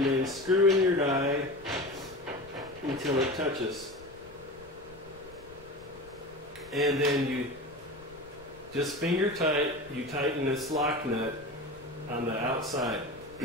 then screw in your die until it touches. And then you just finger tight, you tighten this lock nut on the outside.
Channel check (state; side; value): noise; left; rumble, 23 dB below the sound